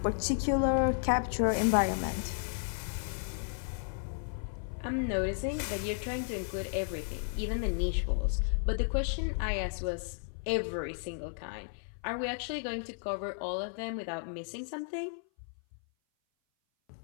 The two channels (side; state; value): right; silent; 55 dB below the other